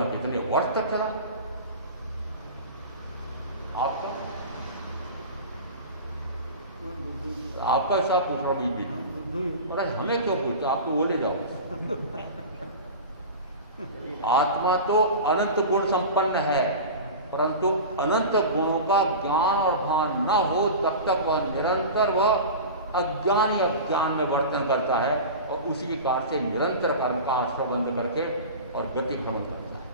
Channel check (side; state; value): both; inverted; correlation -0.30